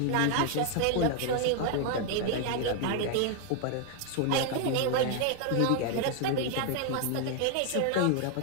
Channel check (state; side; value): different; both; correlation 0.00